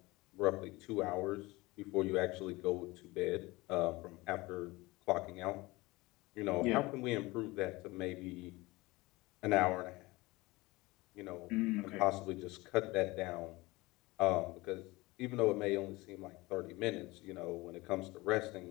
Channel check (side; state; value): right; quieter; 21.7 dB